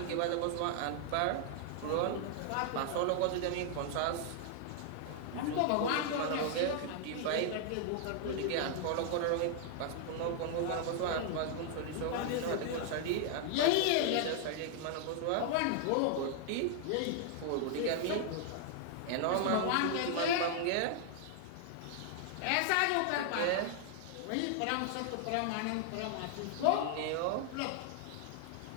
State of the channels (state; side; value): different; both; correlation 0.00